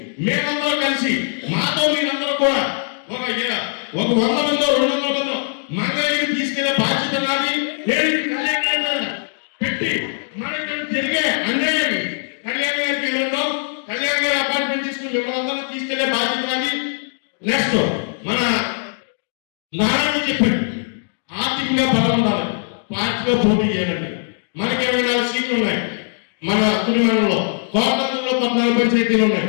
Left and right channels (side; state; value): right; silent; digital silence